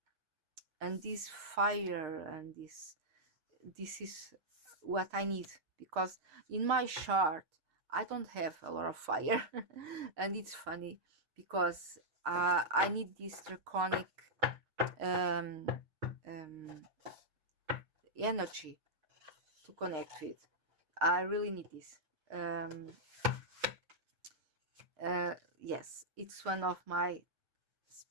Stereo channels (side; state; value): left; late; 6.5 ms